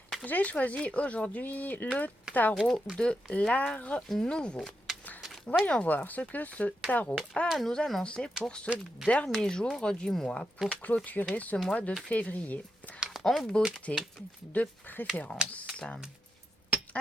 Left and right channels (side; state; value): both; normal; correlation 0.85